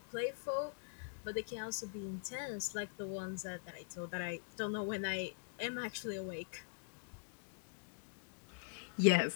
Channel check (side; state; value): right; silent; digital silence